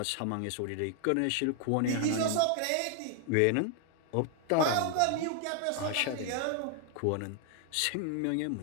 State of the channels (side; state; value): both; different; correlation 0.00